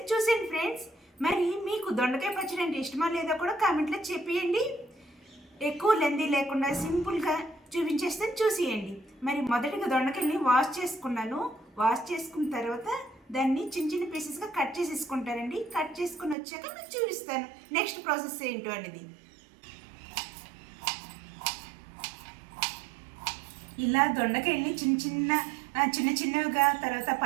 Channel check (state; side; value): drops out; left; at 16.4 s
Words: చూసేయండి ఫ్రెండ్స్. మరి మీకు దొండకాయ పచ్చడి అంటే ఇష్టమా లేదా కూడా కామెంట్లో చెప్పేయండి. ఎక్కువ లెందీ లేకుండా సింపుల్గా చూపించేస్తాను, చూసేయండి. మరి మొదటిగా దొండకాయల్ని వాష్ చేసుకున్నాను. వాష్ చేసుకున్న తర్వాత దాన్ని చిన్న చిన్న పీసెస్గా కట్ చేసేసుకుంటానండి. కట్ చేసుకుని వచ్చాక మీకు చూపిస్తాను నెక్స్ట్ ప్రాసెస్ ఏంటో అనేది. ఇలా దొండకాయల్ని చిన్న చిన్నవిగా తర్వాత